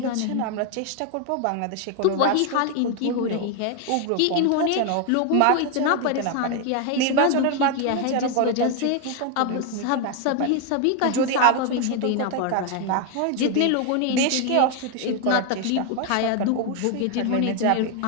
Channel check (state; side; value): different; both; correlation 0.01